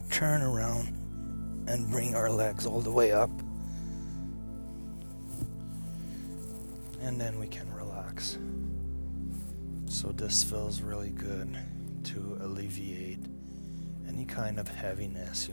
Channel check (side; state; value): both; inverted; correlation -1.00